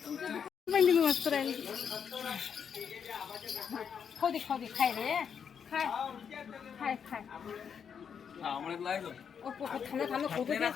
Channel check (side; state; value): right; quieter; 7.3 dB